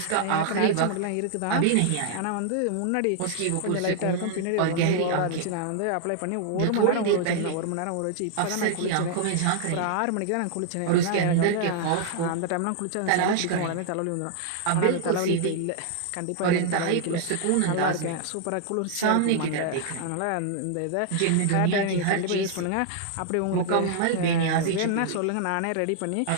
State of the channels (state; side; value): different; both; correlation -0.01